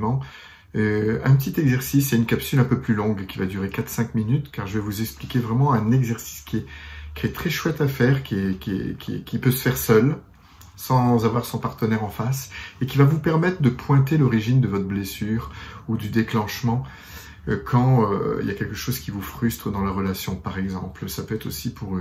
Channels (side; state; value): both; identical; correlation 1.00